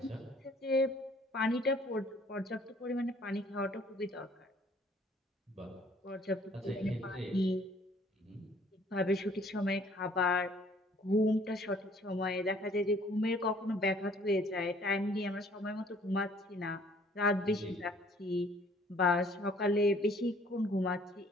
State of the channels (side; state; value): both; normal; correlation 0.58